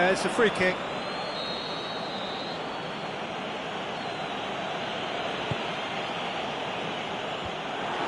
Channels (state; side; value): identical; both; correlation 1.00